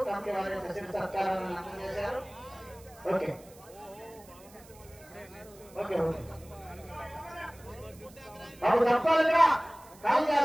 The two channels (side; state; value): right; noise; hiss, 24 dB below the sound